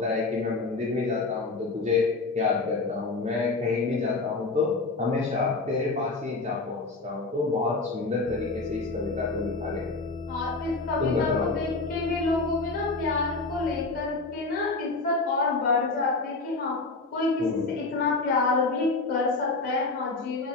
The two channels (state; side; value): quieter; right; 3.6 dB